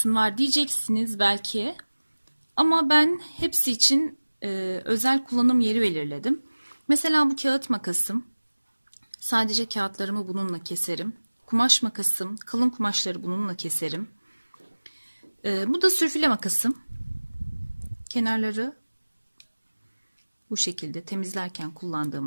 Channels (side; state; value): both; inverted; correlation -1.00